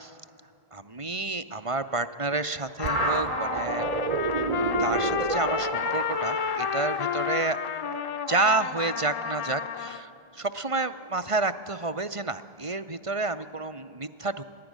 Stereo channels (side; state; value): left; late; 1.5 ms